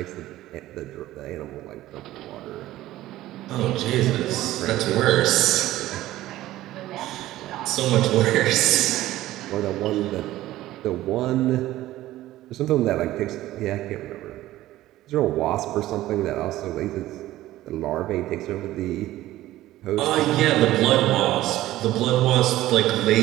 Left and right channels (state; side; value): quieter; left; 15.4 dB